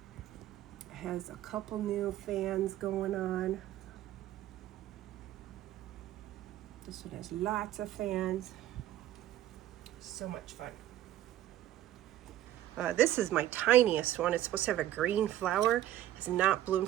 has a couple new fans going on. This one has lots of fans. So much fun. This is my tiniest one. It's supposed to have a green flower. It's not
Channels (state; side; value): quieter; left; 13.1 dB